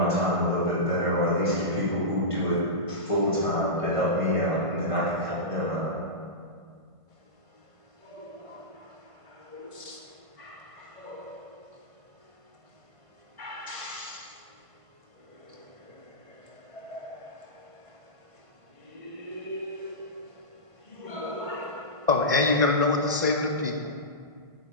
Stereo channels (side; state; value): left; late; 1.5 ms